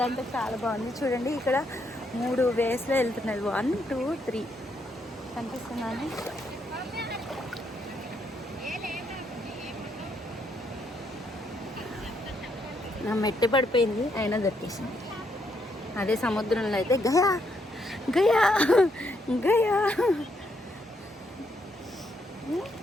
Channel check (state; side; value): normal; both; correlation 0.75